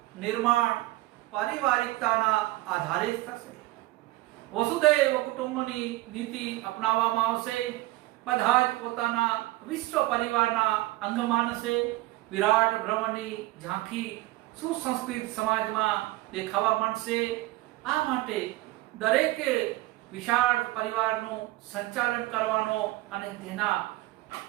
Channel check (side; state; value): left; quieter; 18.7 dB